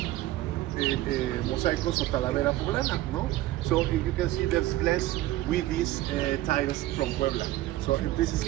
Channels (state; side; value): quieter; left; 16.1 dB